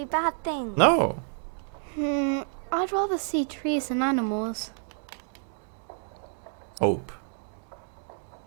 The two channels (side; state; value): left; silent; 59 dB below the other